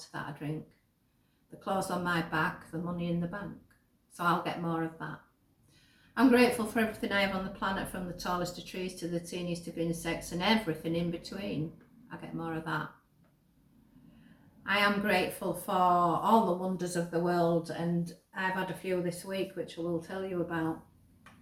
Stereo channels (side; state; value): both; identical; correlation 1.00